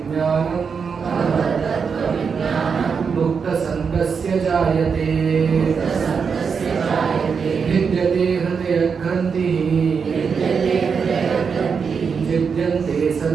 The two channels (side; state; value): left; quieter; 5.9 dB